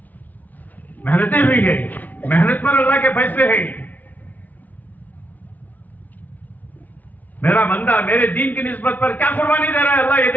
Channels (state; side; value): late; right; 0.079 ms